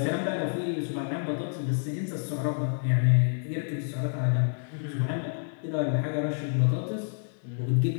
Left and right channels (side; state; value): right; silent; digital silence